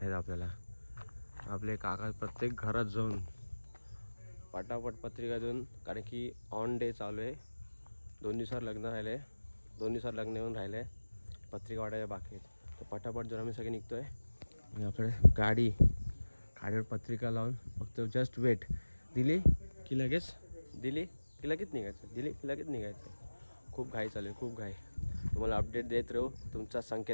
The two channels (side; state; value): both; inverted; correlation -1.00